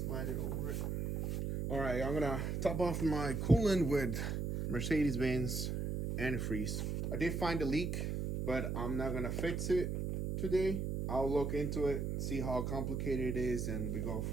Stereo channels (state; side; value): noise; right; hum, 1 dB below the sound